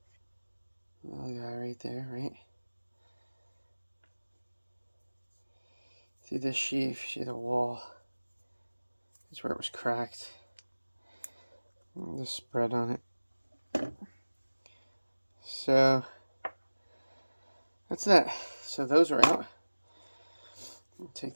Little guy right there, right? See this sheave, see the wall. That's where it was cracked. And the spread on it. So, that's that. So those are out. I'll take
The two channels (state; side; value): inverted; both; correlation -1.00